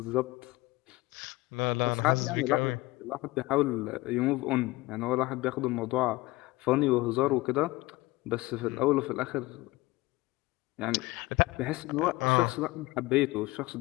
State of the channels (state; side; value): quieter; right; 20.6 dB